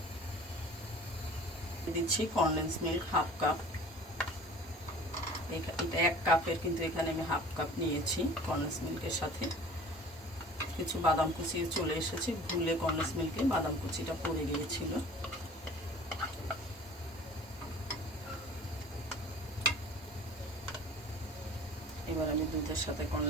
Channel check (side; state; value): both; normal; correlation 0.45